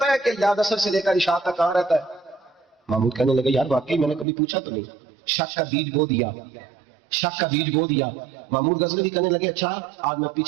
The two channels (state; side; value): drops out; left; at 4.2 s